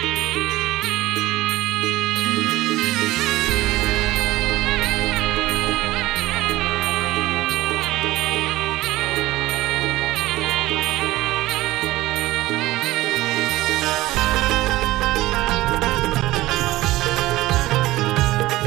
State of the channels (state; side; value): quieter; left; 17.5 dB